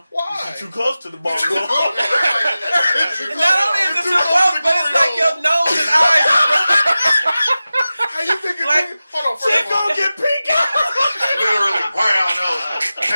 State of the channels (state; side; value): inverted; both; correlation -0.95